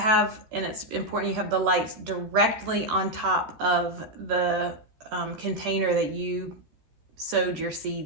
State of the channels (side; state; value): left; late; 13 ms